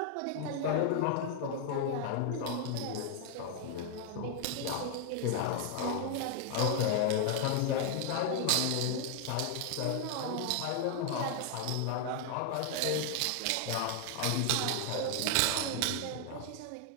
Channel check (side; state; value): both; different; correlation 0.00